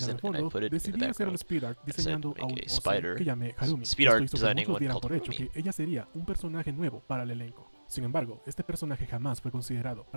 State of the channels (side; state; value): both; inverted; correlation -1.00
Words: and I put it in the background. I said, make a spider. Speed art designing one called Harumi. Ella sería un personaje nuevo para el elenco. Sin embargo, este personaje jamás fue considerado